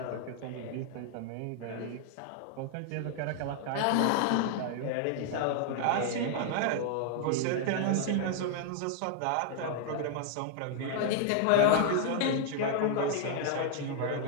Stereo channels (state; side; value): different; both; correlation 0.00